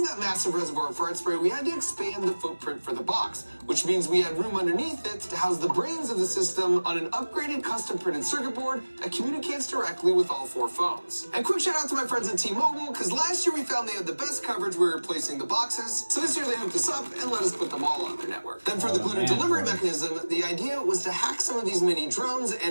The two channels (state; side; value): inverted; both; correlation -1.00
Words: that massive reservoir of fart spray, we had to expand the footprint for the box, which means we had room underneath it to house the brains of the system on an upgraded custom printed circuit board that communicates directly with all 4 phones. And quick shout out to my friends at T-Mobile, because last year we found they had the best coverage we were replacing the boxes, so this year they hooked us up and let us put them all on their network. Then for the glitter delivery mechanism, the idea was to hack some of these mini drones